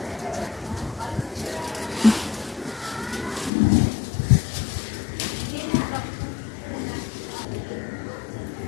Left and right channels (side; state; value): right; drops out; at 3.5 s